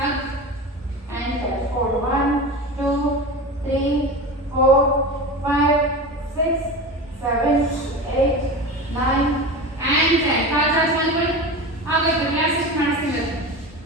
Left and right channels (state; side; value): normal; both; correlation 0.28